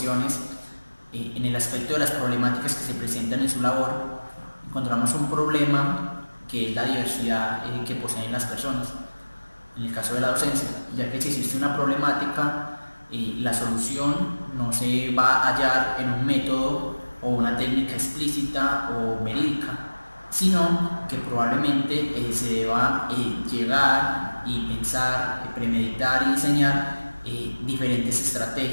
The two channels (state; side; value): inverted; both; correlation -1.00